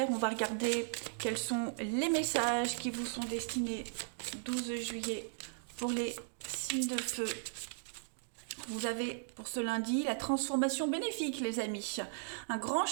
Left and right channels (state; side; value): silent; left; digital silence